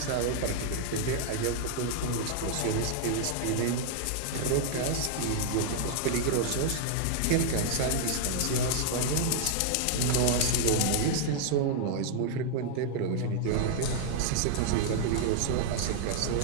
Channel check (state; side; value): different; both; correlation -0.01